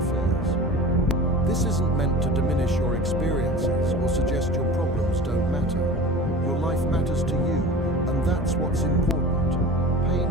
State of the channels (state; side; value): normal; both; correlation 0.37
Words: This isn't meant to diminish your experiences or suggest your problems don't matter. Your life matters to you, and that's what's important.